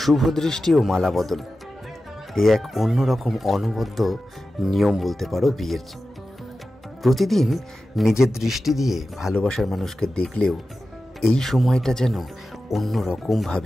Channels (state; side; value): normal; both; correlation 0.93